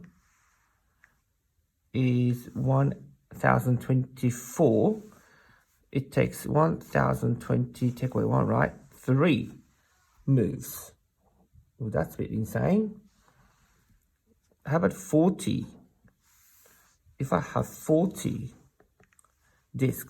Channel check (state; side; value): identical; both; correlation 1.00